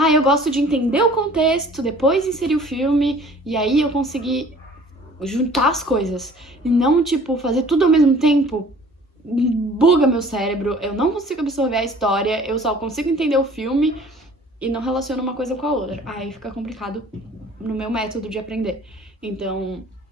eu gosto de entender o contexto, depois inserir o filme, e aí eu conseguir juntar as coisas. E não, tipo, fazer tudo ao mesmo tempo. Buga meu cérebro, eu não consigo absorver a história, eu só consigo entender o filme e não relaciono uma coisa com a outra. Aí fica complicado no meu método de aprender. Então,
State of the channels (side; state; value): both; normal; correlation 0.50